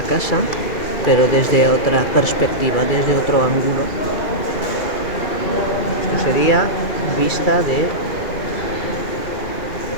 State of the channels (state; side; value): late; right; 2.3 ms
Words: casa, pero desde otra perspectiva, desde otro ángulo. Esto sería vista desde